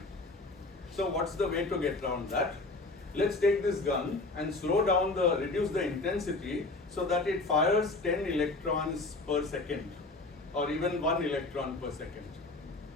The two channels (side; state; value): right; quieter; 3.2 dB